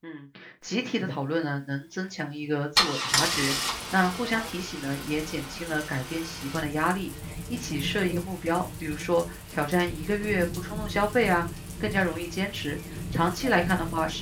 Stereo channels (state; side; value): identical; both; correlation 1.00